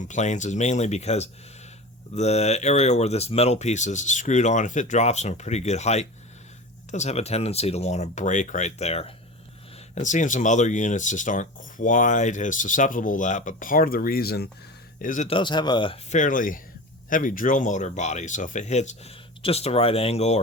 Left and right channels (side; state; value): both; normal; correlation 0.31